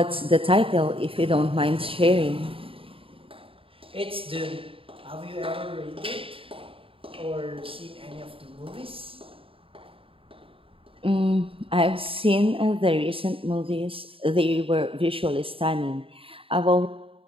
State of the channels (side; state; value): left; late; 0.26 ms